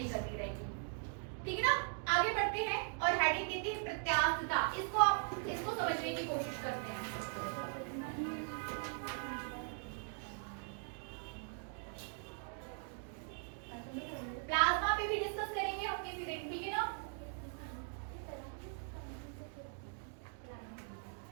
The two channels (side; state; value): left; silent; 51 dB below the other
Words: करनी रहेगी, ठीक है ना। आगे बढ़ते हैं और हेडिंग देते हैं प्रत्यास्थता। इसको समझने की कोशिश करते हैं। प्लाज्मा पे भी डिस्कस करेंगे हम किसी दिन, ठीक है ना।